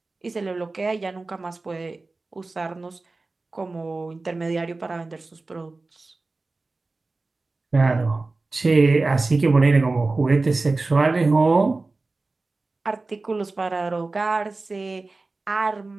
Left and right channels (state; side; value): quieter; left; 3.4 dB